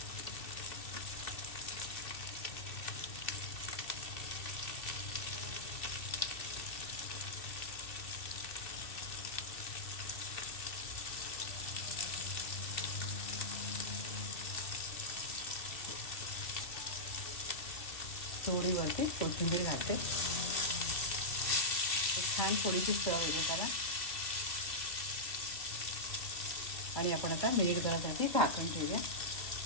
थोडी वरती कोथिंबीर घालते, छान थोडीशी चव येते त्याला। आणि आपण आता मिनिटभरासाठी झाकण ठेवूया।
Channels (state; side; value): late; right; 2.5 ms